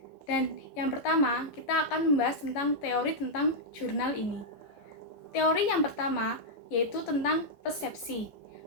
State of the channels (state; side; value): late; right; 14 ms